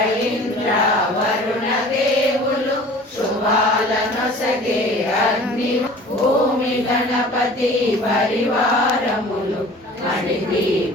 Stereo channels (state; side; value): normal; both; correlation 0.45